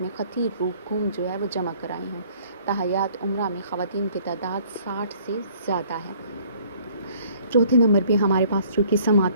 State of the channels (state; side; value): inverted; both; correlation -0.57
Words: میں خطیر رقوم جو ہے وہ جمع کرائی ہوں۔ تاحیات عمرہ میں خواتین کی تعداد 60 سے زیادہ ہے۔ چوتھے نمبر پہ ہمارے پاس جو قسم